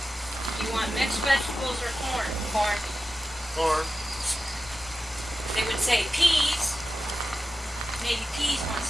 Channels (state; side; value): normal; both; correlation 0.93